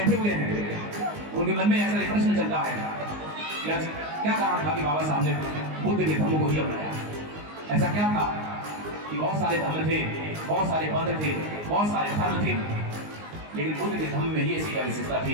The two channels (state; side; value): late; left; 19 ms